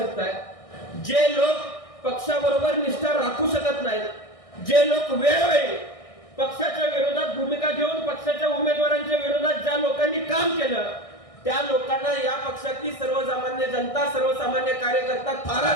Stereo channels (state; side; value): late; right; 1.6 ms